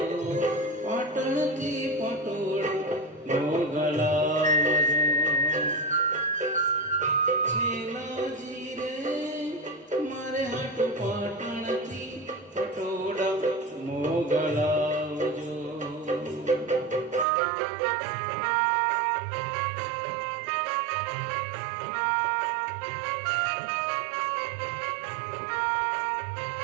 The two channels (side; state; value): left; drops out; at 17.2 s